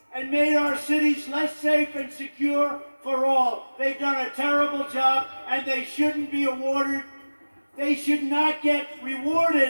and made our cities less safe and secure for all. They've done a terrible job, and they shouldn't be awarded. They should not get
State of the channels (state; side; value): inverted; both; correlation -1.00